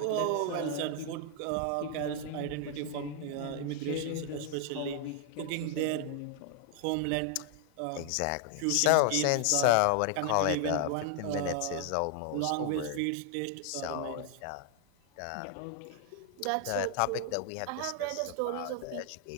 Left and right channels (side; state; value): both; different; correlation 0.00